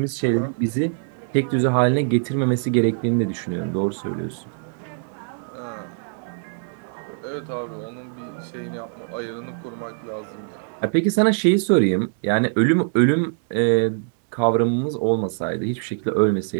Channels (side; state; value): left; silent; digital silence